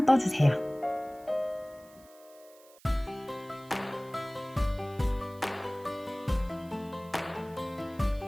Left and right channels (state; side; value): noise; right; hiss, 25 dB below the sound